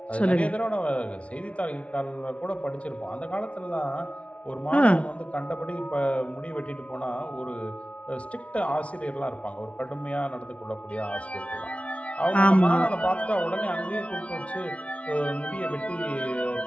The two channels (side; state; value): right; late; 0.063 ms